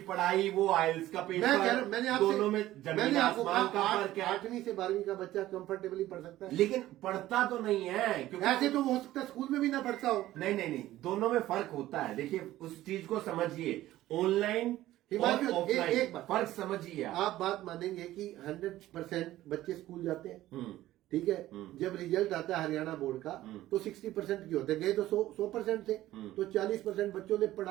पढ़ाई, वो आइल्स का पेपर, दोनों में जमीन आसमान का फर्क है। 8वीं से 12वीं का बच्चा कंफर्टेबली पढ़ सकता है, लेकिन पढ़ता तो नहीं है, क्योंकि ऐसे तो हो सकता है स्कूल में भी ना पढ़ता हो। नहीं, दोनों में फर्क होता है। देखिए उस चीज को समझिए, ऑनलाइन और ऑफलाइन फर्क समझिए। आप बात मानेंगे कि 100% बच्चे स्कूल जाते हैं, ठीक है। जब रिजल्ट आता है हरियाणा बोर्ड का तो 60% की होते गए, तो 100% थे, तो 40% बच्चों ने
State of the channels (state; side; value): quieter; left; 15.0 dB